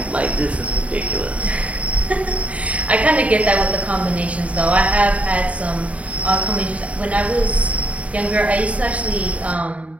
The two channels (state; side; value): late; left; 0.066 ms